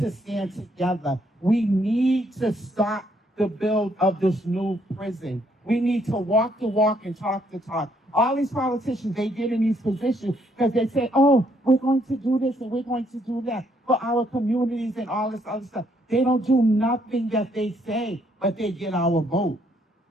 stand together. We need to stop the build of this new prison. We need to walk the walk and talk the talk. All these politicians, they get in these positions because they say, oh, we're going to do this and we're going to do that for our communities and all this other stuff. They don't do nothing that they say, but they get our vote.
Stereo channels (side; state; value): both; normal; correlation 0.70